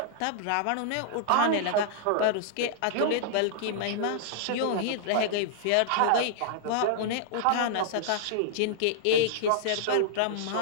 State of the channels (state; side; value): different; both; correlation -0.01